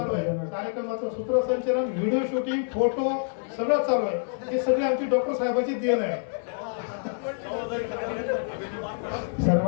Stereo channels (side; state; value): right; silent; 60 dB below the other